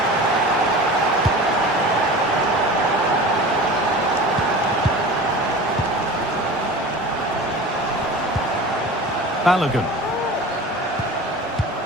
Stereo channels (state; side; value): normal; both; correlation 0.36